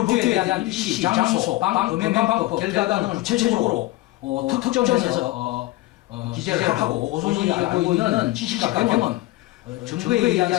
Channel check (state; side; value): quieter; right; 18.6 dB